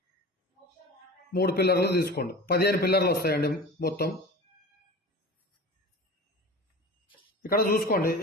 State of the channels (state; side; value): normal; both; correlation 0.36